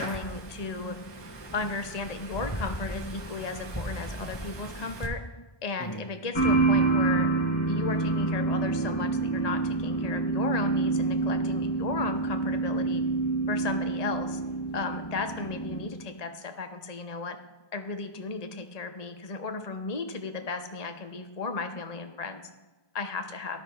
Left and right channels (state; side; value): late; right; 1.2 ms